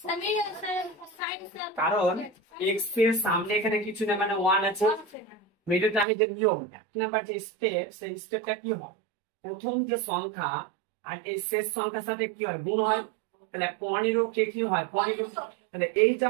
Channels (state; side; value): drops out; left; at 6.1 s